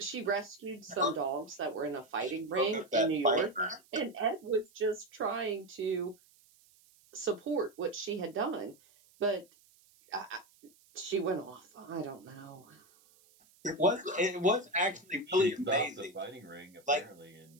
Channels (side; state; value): right; noise; hiss, 29 dB below the sound